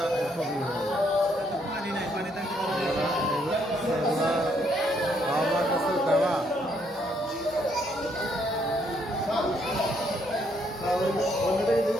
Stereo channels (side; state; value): both; normal; correlation 0.71